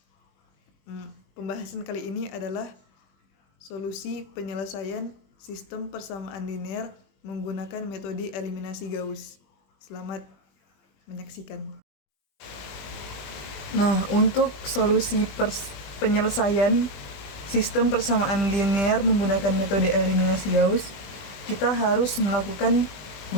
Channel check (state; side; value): late; right; 20 ms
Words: Pembahasan kali ini adalah solusi penyelesaian sistem persamaan linear menggunakan metode eliminasi Gauss. Selamat menyaksikan. Nah, untuk solusi penyelesaian sistem persamaan linear menggunakan metode eliminasi Gauss, kita harus melakukan